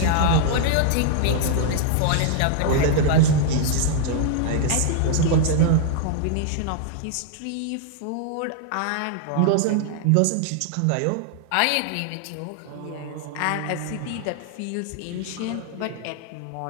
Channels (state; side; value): different; both; correlation 0.00